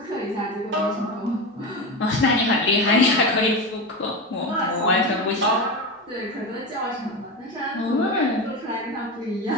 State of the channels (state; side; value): normal; both; correlation 0.21